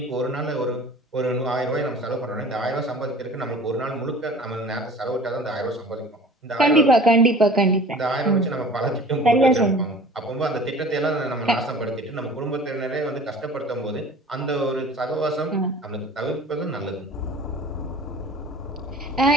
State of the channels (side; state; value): both; normal; correlation 0.44